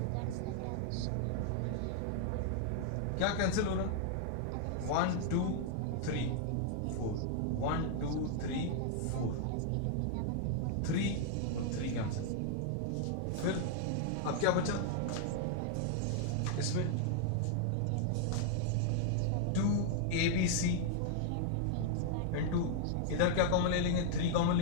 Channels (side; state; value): both; different; correlation -0.01